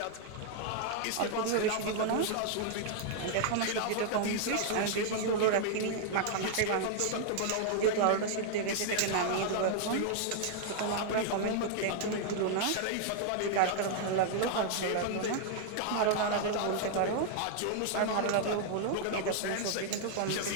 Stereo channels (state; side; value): different; both; correlation 0.00